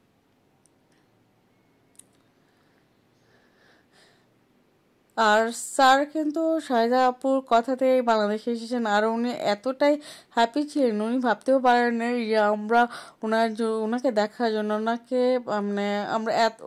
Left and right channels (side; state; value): both; identical; correlation 1.00